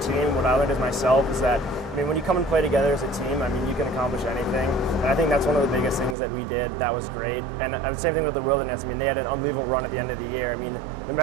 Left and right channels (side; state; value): left; drops out; at 6.2 s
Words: team, what I learned as myself, is that, I mean, when you come and play together as a team, I mean, you can accomplish anything. And I think that's one of the biggest things that we did that was great. And the same thing with the Wilderness. I mean, they had an unbelievable run at the end of the year. I mean, no